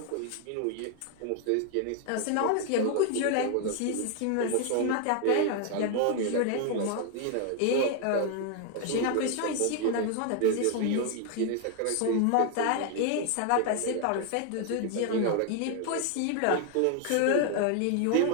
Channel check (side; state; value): both; different; correlation 0.00